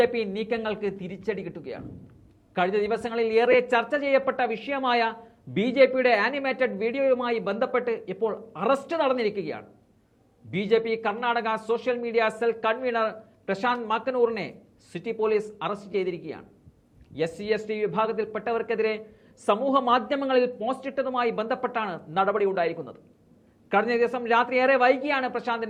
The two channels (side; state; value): both; identical; correlation 1.00